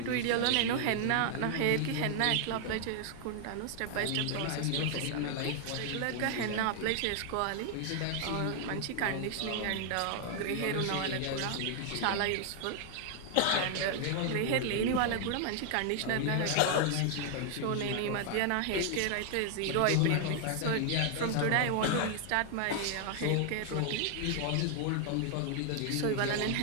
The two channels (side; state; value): both; different; correlation 0.00